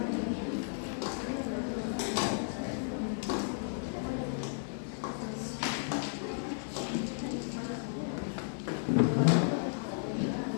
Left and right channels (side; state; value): right; silent; 55 dB below the other